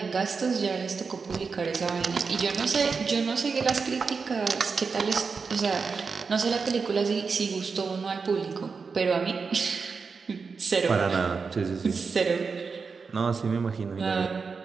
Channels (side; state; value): left; quieter; 5.0 dB